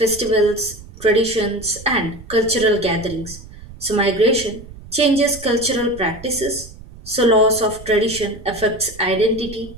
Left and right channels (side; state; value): right; noise; rumble, 17 dB below the sound